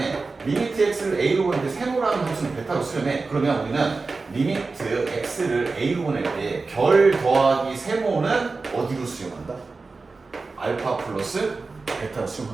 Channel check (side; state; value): left; quieter; 4.0 dB